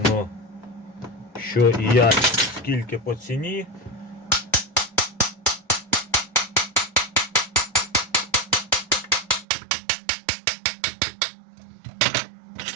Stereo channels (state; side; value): drops out; left; at 9.5 s